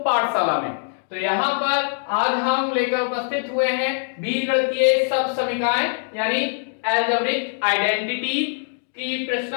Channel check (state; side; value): silent; right; digital silence